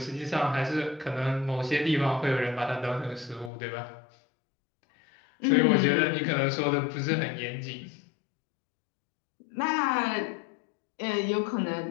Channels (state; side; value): drops out; right; at 3.5 s